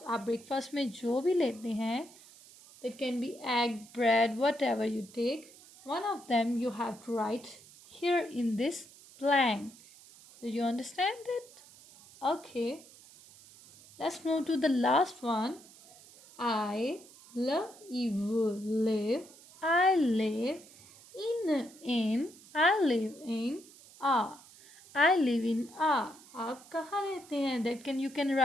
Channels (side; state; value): right; noise; hiss, 22 dB below the sound